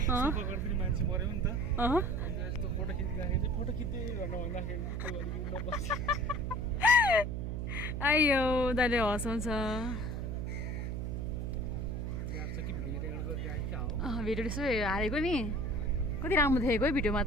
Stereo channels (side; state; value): right; noise; hum, 3 dB below the sound